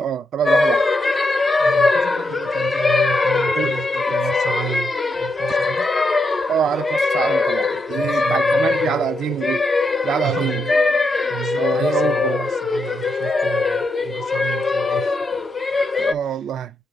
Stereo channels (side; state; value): both; normal; correlation 0.82